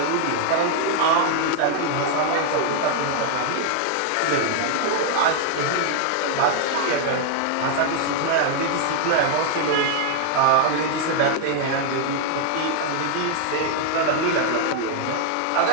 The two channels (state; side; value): different; both; correlation 0.00